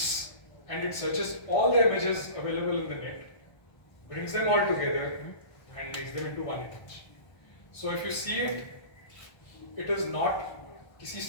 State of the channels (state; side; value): late; right; 1.2 ms